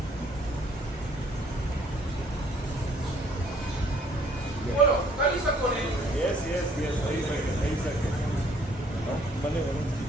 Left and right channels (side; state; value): both; normal; correlation 0.62